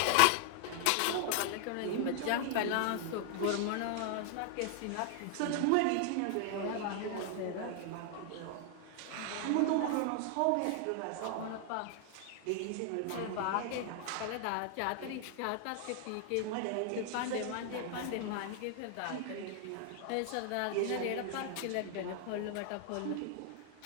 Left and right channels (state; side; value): different; both; correlation 0.00